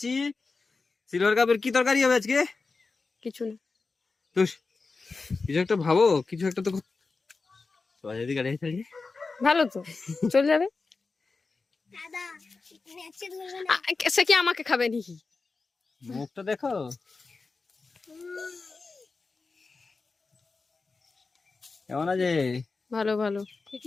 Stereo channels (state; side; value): quieter; right; 4.1 dB